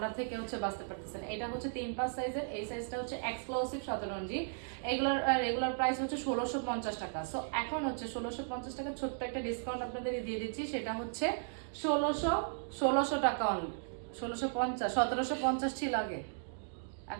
থেকে হচ্ছে বাঁচতে পারতেছেন। এটা হচ্ছে 3-5 সাইজের, এই সাইজটা হচ্ছে এক্সক্লুসিভ শতরঞ্জি। এগুলোর রেগুলার প্রাইস হচ্ছে 1650 টাকা। সো এখন হচ্ছে 1650 টাকা ছোট্ট একটা ডিসকাউন্ট আপনাদের দিয়ে দিচ্ছি। সেটা হচ্ছে 1600 টাকা অনলি। 1650, 1750 ছিল আগে।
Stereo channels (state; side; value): silent; left; digital silence